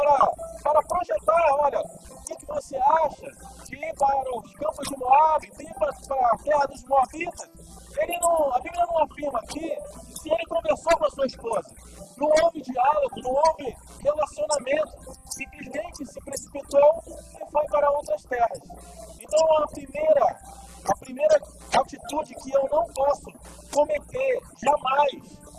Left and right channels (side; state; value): both; identical; correlation 1.00